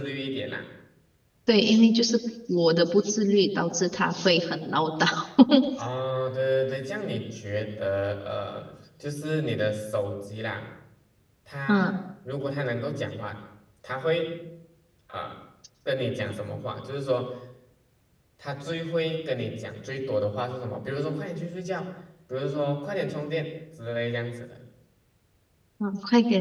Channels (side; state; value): both; identical; correlation 1.00